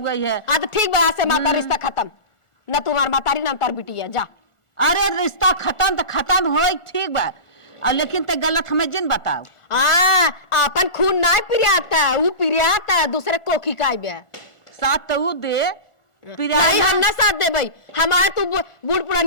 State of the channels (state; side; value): late; right; 1.4 ms